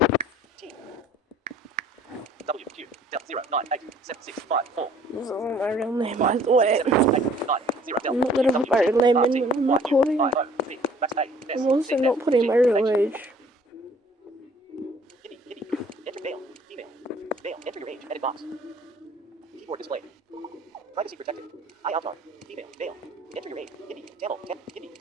T. W. Q. Del 0 9 8 7 6 5 4 This isn't my real name, by the way. 7 8 9 0 Del I'm not gonna put my real name in when I'm recording. I'm also not putting my real age. Kitty. Enter male. Female. Male. Enter your age. Edit box. Keyboard display. Privacy protected. I avatar. Female. Male. Enter your age. Hindi. Tamil. Hindi.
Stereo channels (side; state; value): both; normal; correlation 0.55